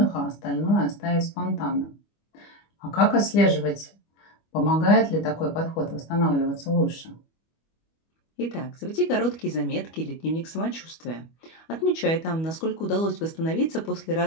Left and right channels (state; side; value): late; right; 25 ms